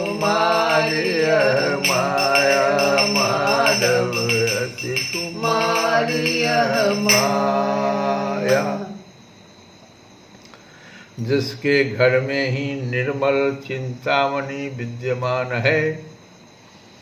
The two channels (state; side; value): identical; both; correlation 1.00